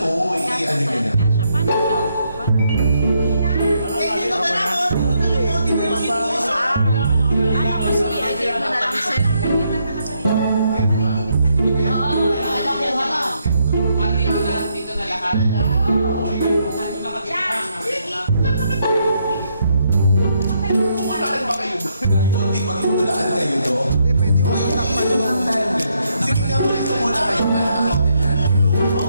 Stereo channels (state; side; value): inverted; both; correlation -0.76